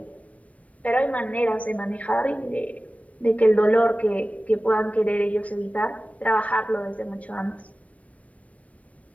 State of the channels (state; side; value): late; right; 0.066 ms